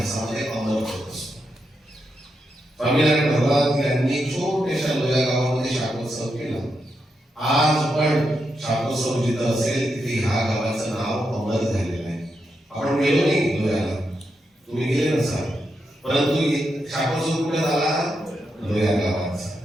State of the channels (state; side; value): normal; both; correlation 0.84